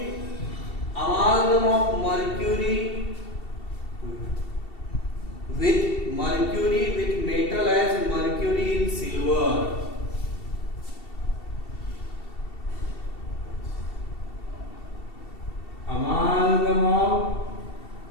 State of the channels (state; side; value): late; right; 2.7 ms